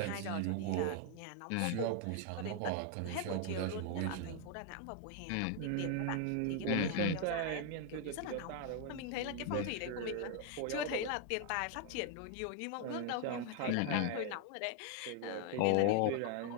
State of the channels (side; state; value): both; different; correlation 0.00